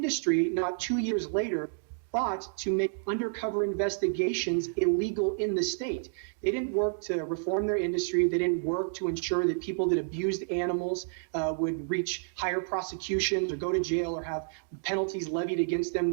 not 2 years later, fought to make undercover investigations illegal in the state. They didn't work to reform their industry. They didn't work to ensure that people that abused animals would reach higher prosecutions or go to jail or have penalties levied against them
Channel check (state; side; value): silent; left; digital silence